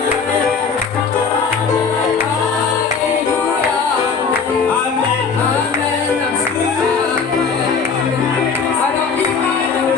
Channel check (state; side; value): quieter; right; 5.5 dB